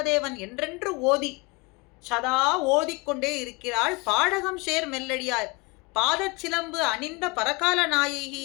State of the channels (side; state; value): right; quieter; 26.8 dB